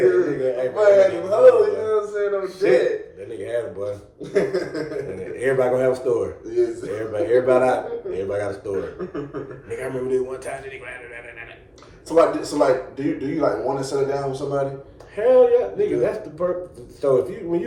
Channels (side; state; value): both; identical; correlation 1.00